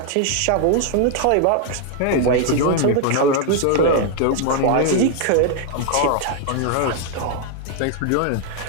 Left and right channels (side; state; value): both; different; correlation 0.00